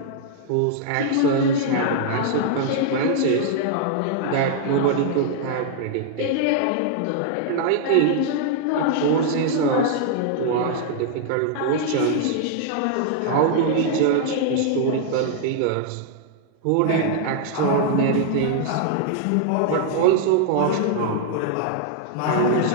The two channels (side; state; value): both; different; correlation -0.01